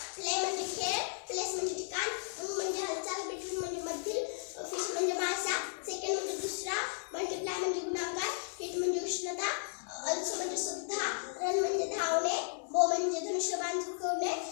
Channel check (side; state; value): right; silent; 55 dB below the other